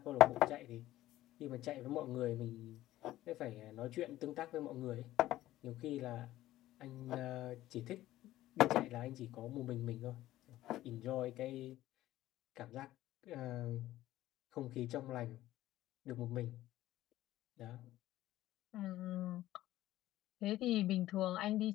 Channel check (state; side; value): quieter; right; 15.0 dB